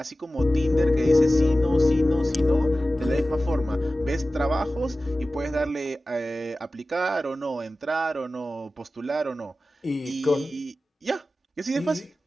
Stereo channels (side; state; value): both; normal; correlation 0.95